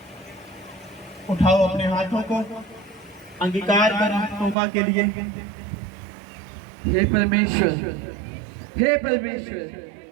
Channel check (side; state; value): left; drops out; at 4.5 s